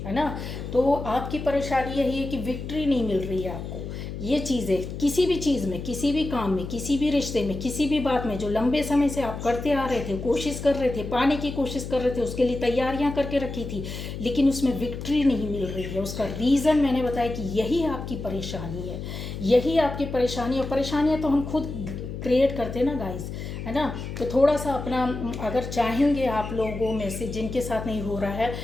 है ना। तो आपकी परेशानी यही है कि विक्ट्री नहीं मिल रही है आपको। ये चीज़ें किसी भी चीज़ में, किसी भी काम में, किसी भी रिश्ते में, किसी भी बात में जो लंबे समय से आप करते आ रहे थे, कोशिश कर रहे थे, पाने की कोशिश कर रहे थे, उसके लिए तैयारियां करके रखी थी, लेकिन उसमें विक्ट्री नहीं मिल रही है। उसका रीज़न मैंने बताया कि यही आपकी परेशानी है, यही आपकी परेशानी है। परेशानियाँ तो हम खुद क्रिएट करते हैं ना गाइस, है ना। तो थोड़ा सा अपना, अगर चाहेंगे आप लोगों में से जिनके साथ नहीं हो रहा है,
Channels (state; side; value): noise; left; hum, 7 dB below the sound